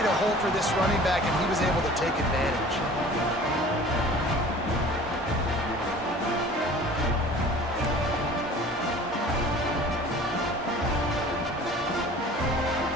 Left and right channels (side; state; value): both; normal; correlation 0.45